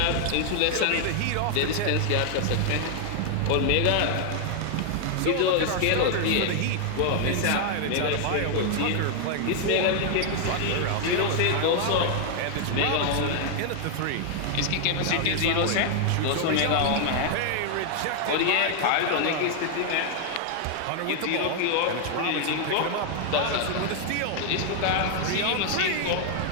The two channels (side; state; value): both; different; correlation 0.00